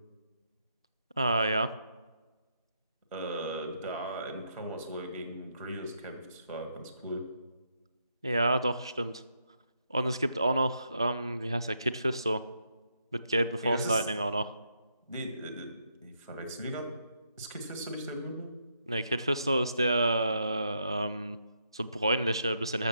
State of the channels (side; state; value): both; inverted; correlation -0.78